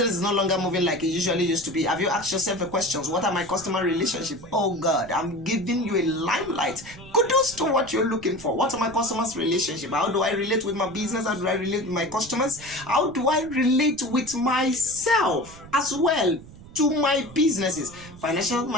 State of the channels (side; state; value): right; noise; rumble, 18 dB below the sound